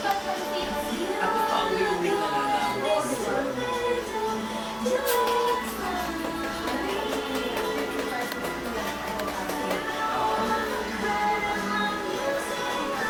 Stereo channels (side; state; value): both; identical; correlation 1.00